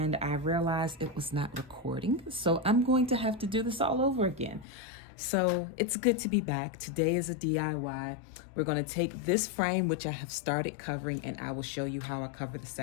I realized it was not recording, so I'm going to have to do this all over again. So it's good to be back. Today is a DIY. We're going to take this frame, which I have started covering, and I will show you how I cover the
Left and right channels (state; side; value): drops out; right; at 4.7 s